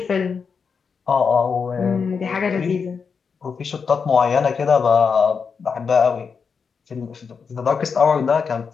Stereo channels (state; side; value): quieter; right; 5.8 dB